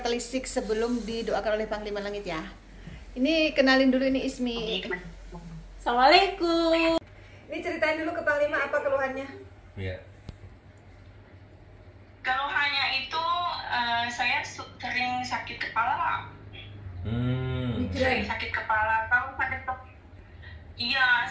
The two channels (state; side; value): identical; both; correlation 1.00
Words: sebelum didoakan oleh Panglima Langit ya. Ini kenalin dulu, ini Ismi. Assalamualaikum. Ini ceritain dulu ke Panglima apa keluhannya. Iya. Keluhannya itu saya sering sakit kepala. Sering sakit kepala. Kalau